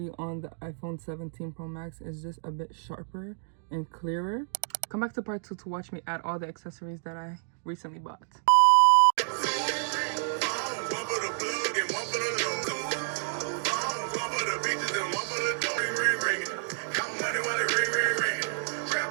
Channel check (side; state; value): left; silent; digital silence